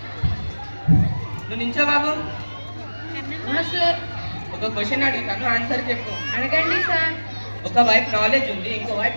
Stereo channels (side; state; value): both; inverted; correlation -1.00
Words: నువ్వు నించో బాబు. సార్ ఒక క్వశ్చన్ అడుగుతాను, ఆన్సర్ చెప్పు. అడగండి సార్. ఒక వైపు నాలెడ్జ్ ఉంది, ఇంకో వైపు